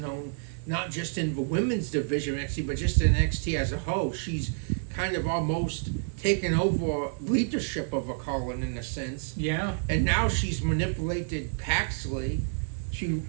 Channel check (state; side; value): silent; left; 59 dB below the other